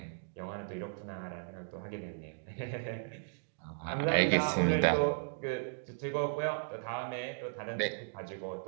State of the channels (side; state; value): left; silent; digital silence